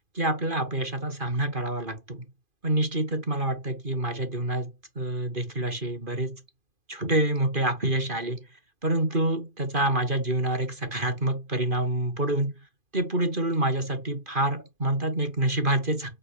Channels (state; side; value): late; left; 2.5 ms